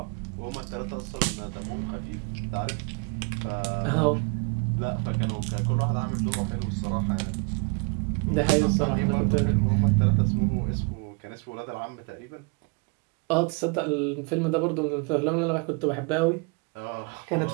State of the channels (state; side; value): quieter; left; 32.5 dB